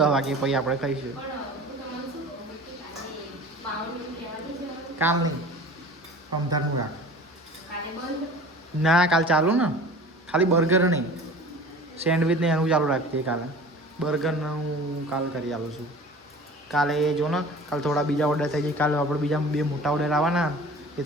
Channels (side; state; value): both; normal; correlation 0.41